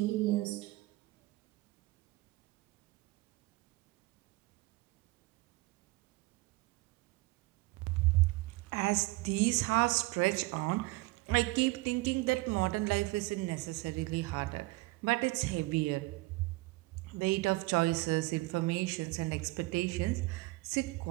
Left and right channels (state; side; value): quieter; left; 21.7 dB